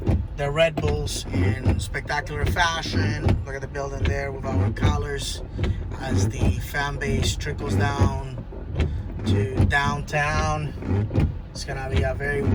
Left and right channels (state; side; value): identical; both; correlation 1.00